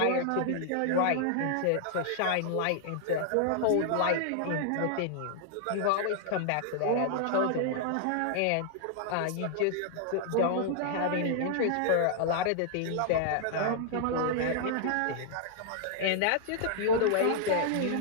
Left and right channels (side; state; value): both; different; correlation -0.01